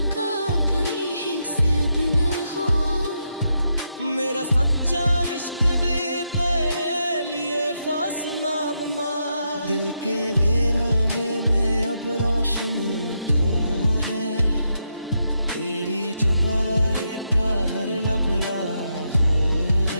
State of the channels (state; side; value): inverted; both; correlation -0.82